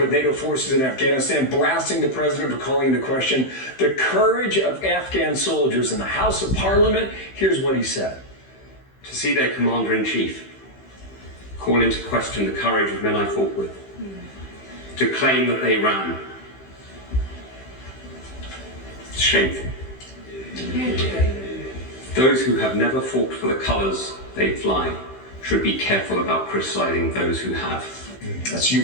with NATO forces in Afghanistan, blasting the president for calling into question the courage of Afghan soldiers in the House of Parliament. Here's what he said. To see their commander-in-chief call into question the courage of men I fought with, to claim that they ran. It's shameful. Those who have never fought for the colours they fly should be careful about criticising those who have. That's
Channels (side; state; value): right; late; 15 ms